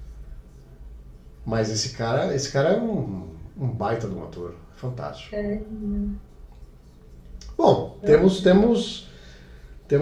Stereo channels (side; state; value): both; identical; correlation 1.00